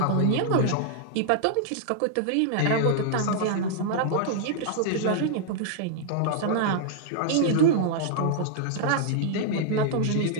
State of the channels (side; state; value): both; different; correlation -0.01